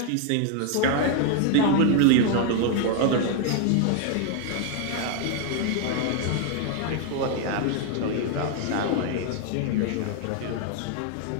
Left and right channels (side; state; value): both; different; correlation 0.00